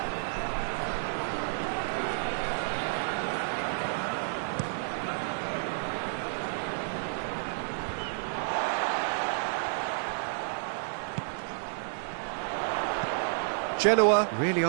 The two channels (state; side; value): silent; left; digital silence